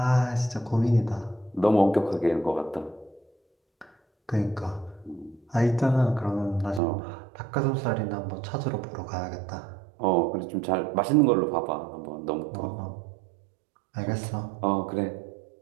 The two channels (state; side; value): drops out; left; at 6.8 s